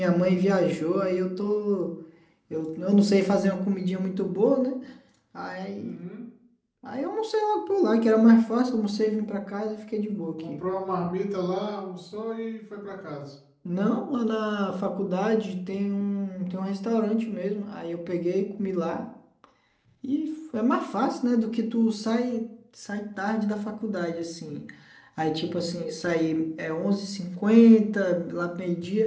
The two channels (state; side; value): identical; both; correlation 1.00